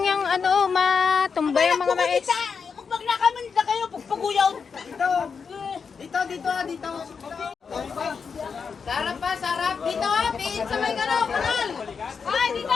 yung ano, matumbay ang mga mais. Pag nakaman na kayo, pagpaguyaw. Dito. Sarap pa, sarap. Dito, Pi. Sa may galaw, kanal! Ay,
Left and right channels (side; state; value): right; quieter; 5.8 dB